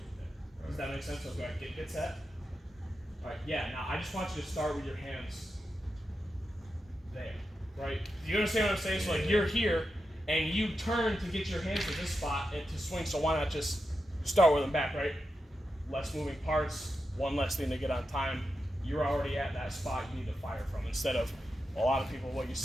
right there. Does that make sense? So go ahead, get set. All right, yeah, now I just want you to start with your hands there, right? Do you understand what I'm saying? So like you're here and you turn to get your hands to this spot and to swing, so why not just start with them back, right? Less moving parts, one less thing to get on time. You're already at that spot you need to fire from, instead of a lot of people, what you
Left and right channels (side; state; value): both; normal; correlation 0.89